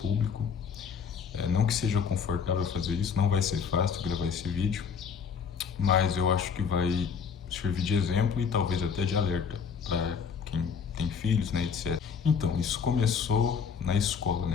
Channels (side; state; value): right; quieter; 6.5 dB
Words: Não que seja confortável fazer isso, não vai ser fácil gravar esse vídeo, mas eu acho que vai servir de exemplo e talvez até de alerta para quem tem filhos, né, etc. Então, isso começou na escola,